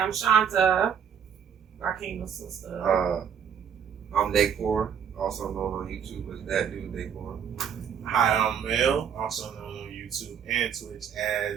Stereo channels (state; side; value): quieter; left; 7.8 dB